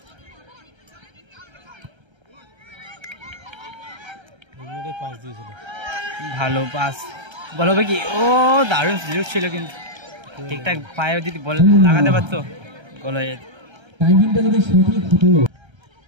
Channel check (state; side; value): late; left; 1.3 ms